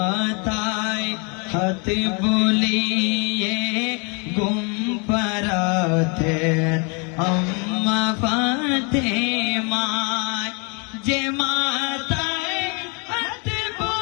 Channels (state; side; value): quieter; right; 34.3 dB